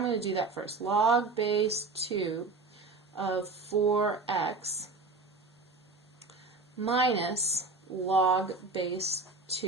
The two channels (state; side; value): quieter; left; 3.7 dB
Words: going to do that first. Log base 2 of 4x minus log base